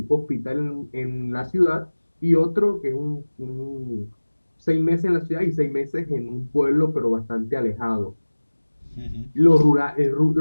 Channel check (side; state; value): both; inverted; correlation -1.00